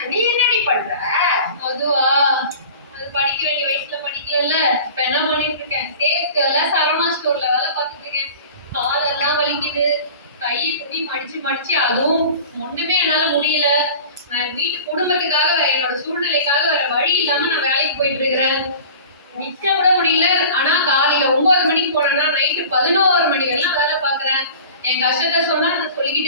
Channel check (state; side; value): inverted; both; correlation -0.40